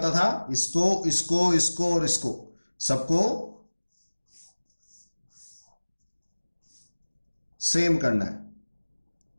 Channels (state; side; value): inverted; both; correlation -1.00